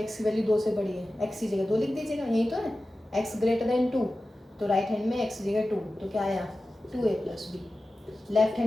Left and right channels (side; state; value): both; normal; correlation 0.94